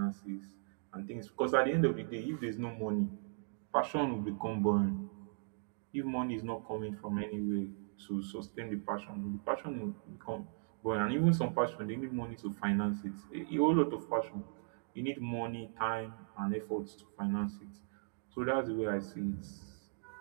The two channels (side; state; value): left; silent; digital silence